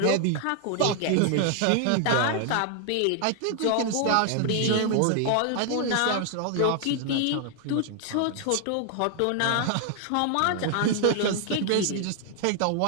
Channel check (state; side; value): different; both; correlation 0.00